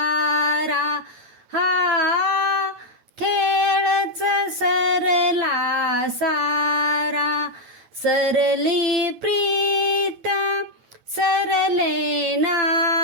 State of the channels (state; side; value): late; left; 9.3 ms